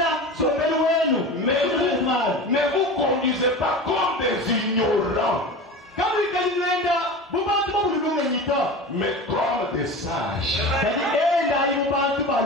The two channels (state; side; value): normal; both; correlation 0.31